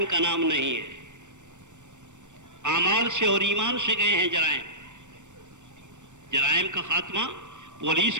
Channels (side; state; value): left; late; 0.84 ms